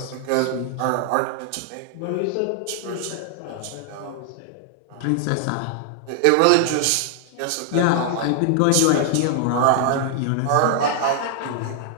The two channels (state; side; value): different; both; correlation 0.00